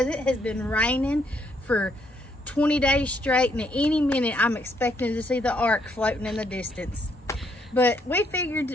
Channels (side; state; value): both; normal; correlation 0.72